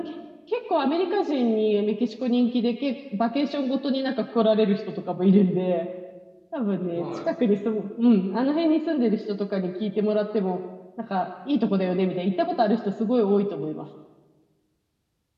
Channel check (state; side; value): identical; both; correlation 1.00